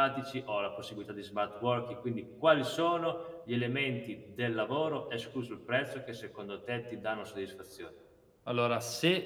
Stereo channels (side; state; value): both; identical; correlation 1.00